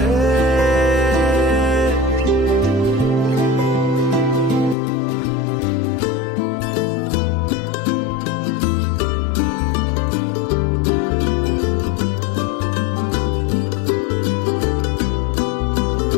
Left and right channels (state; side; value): drops out; right; at 4.8 s